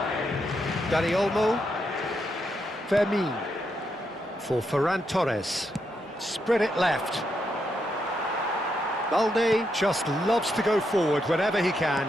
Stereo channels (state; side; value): normal; both; correlation 0.81